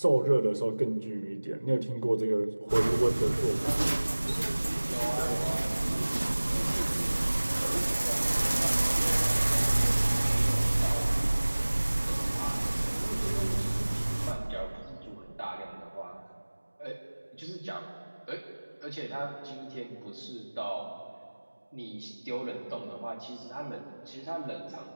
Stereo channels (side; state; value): both; inverted; correlation -1.00